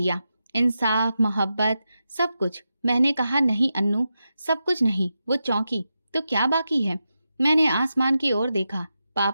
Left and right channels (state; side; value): inverted; both; correlation -0.89